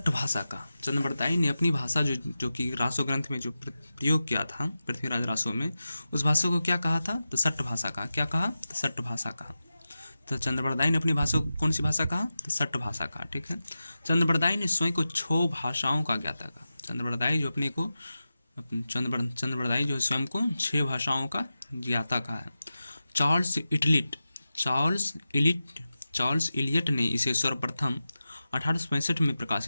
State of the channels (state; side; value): inverted; both; correlation -0.93